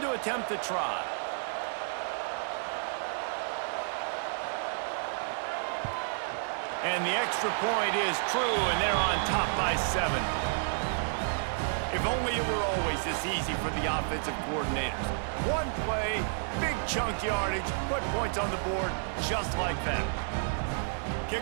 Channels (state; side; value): silent; left; digital silence